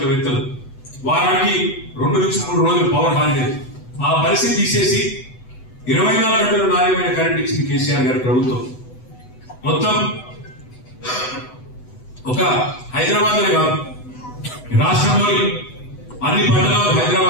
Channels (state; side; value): late; right; 8.0 ms